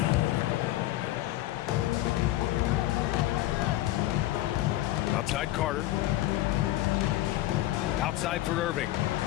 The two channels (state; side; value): quieter; right; 15.6 dB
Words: Outside Carter. Outside for Irving.